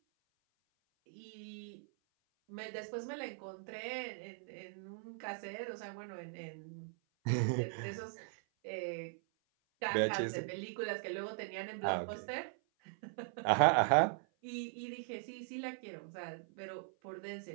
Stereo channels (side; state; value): left; silent; 51 dB below the other